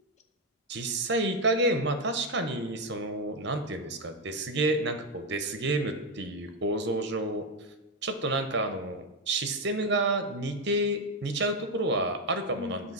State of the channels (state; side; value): normal; both; correlation 0.07